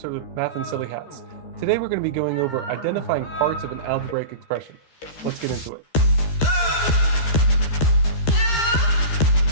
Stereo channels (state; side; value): late; right; 13 ms